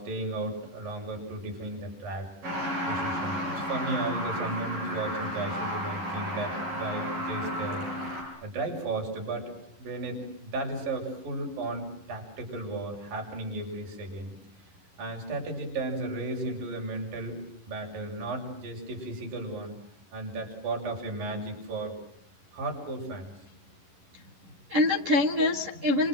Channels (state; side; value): late; left; 11 ms